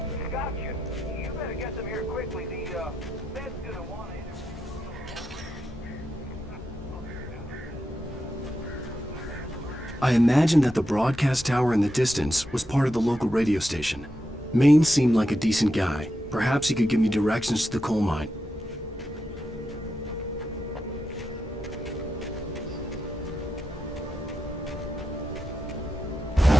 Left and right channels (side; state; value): both; normal; correlation 0.86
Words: Got you. You better get them here quickly. The Fed's gonna want to interview. I imagined that the broadcast tower in the distance was part of the local radio station. Maine seemed like a decent guy. Perhaps he could give me directions to the coal mine.